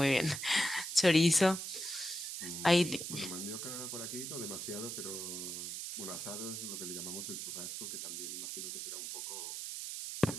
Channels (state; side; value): noise; right; hiss, 5 dB below the sound